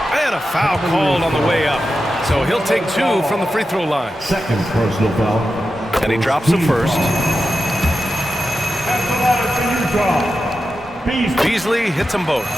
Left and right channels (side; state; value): both; normal; correlation 0.91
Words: And a foul called on the way up. So he'll take 2 from the free throw line. Second personal foul. And he drops the first. Beasley hits them both.